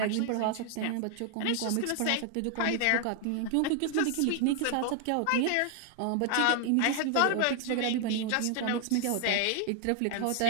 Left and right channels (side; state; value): both; different; correlation 0.00